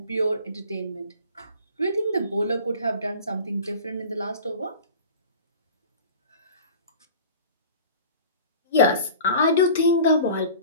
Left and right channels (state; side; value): inverted; both; correlation -0.41